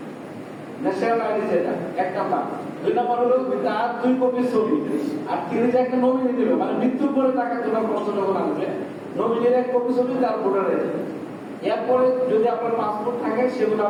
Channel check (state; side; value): identical; both; correlation 1.00